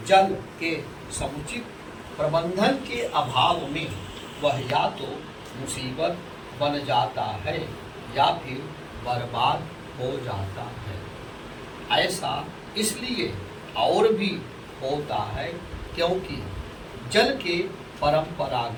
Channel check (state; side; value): identical; both; correlation 1.00